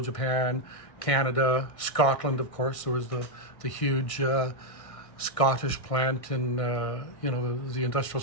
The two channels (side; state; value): right; late; 1.6 ms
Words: Japan, Canada, Scotland, of course. There was the huge Scottish plant in the industrial